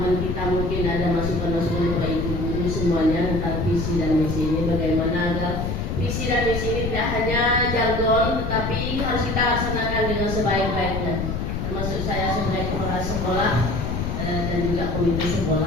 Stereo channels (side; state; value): left; noise; rumble, 2 dB below the sound